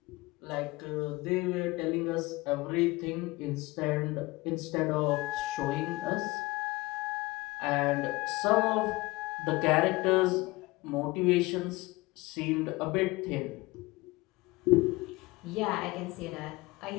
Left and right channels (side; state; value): right; quieter; 21.5 dB